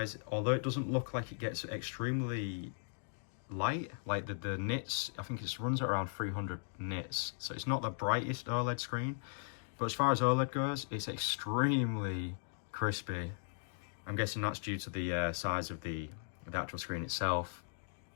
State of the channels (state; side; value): silent; right; digital silence